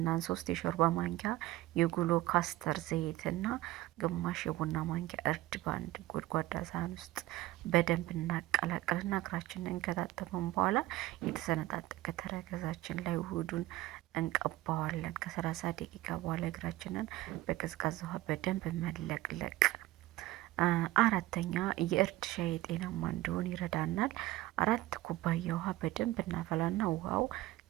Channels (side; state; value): left; quieter; 17.2 dB